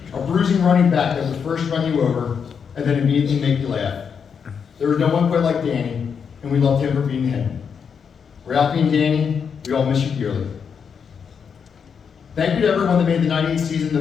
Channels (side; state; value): right; quieter; 6.7 dB